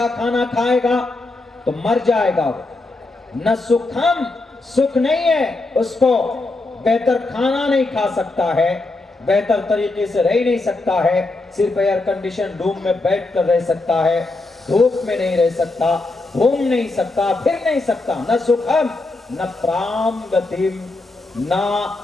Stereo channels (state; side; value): quieter; right; 3.1 dB